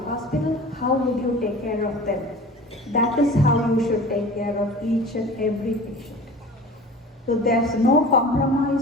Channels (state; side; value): normal; both; correlation 0.40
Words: how would you take care of them? That is how you should take care of each and every patient. So there's no compromise